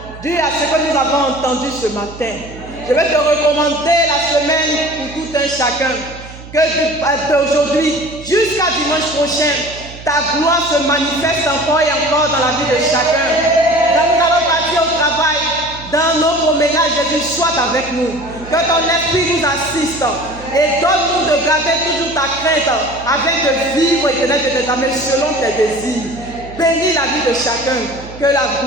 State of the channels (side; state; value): right; noise; hum, 16 dB below the sound